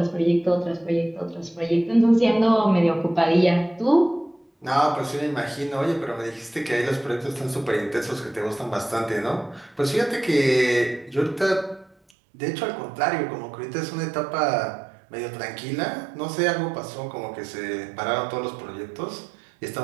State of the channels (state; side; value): drops out; left; at 12.0 s